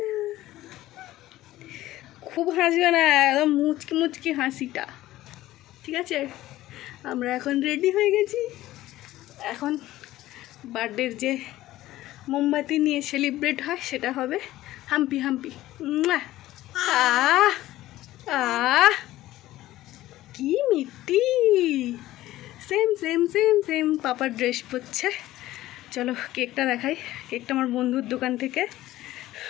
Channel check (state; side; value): quieter; right; 15.6 dB